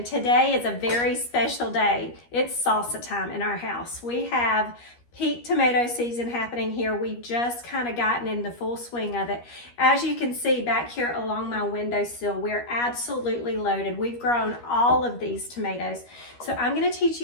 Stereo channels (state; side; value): late; right; 13 ms